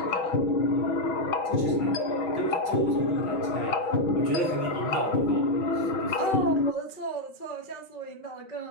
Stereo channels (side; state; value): right; late; 5.8 ms